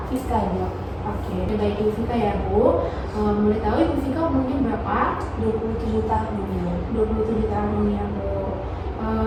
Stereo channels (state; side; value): identical; both; correlation 1.00